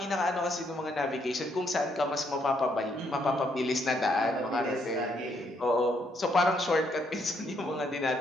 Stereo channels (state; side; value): normal; both; correlation 0.73